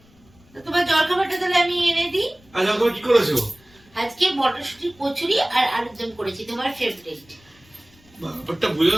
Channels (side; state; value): left; noise; rumble, 29 dB below the sound